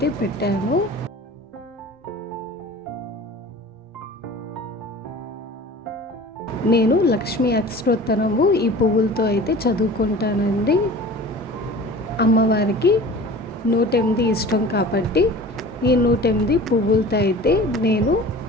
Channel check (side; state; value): both; normal; correlation 0.40